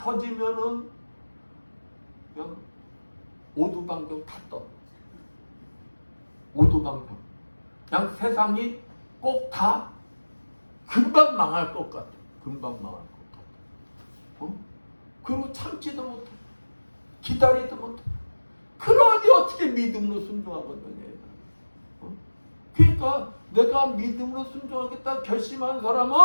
그냥 오두방정 다 떠. 오두방정. 그냥 세상이 꼭 다 금방 망할 것 같아. 금방 망할 것 같아. 어? 그리고 참지도 못해. 기다리도 못해. 그러니 어떻게 믿음으로 순종하겠느냐. 어? 그러니까 내가 믿음으로 순종하겠다 결심한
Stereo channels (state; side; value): inverted; both; correlation -1.00